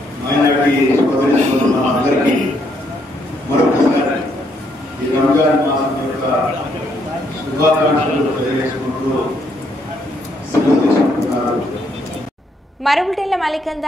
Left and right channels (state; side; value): normal; both; correlation 0.73